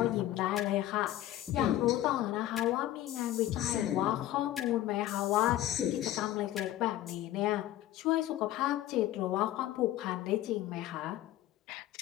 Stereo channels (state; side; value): quieter; right; 13.7 dB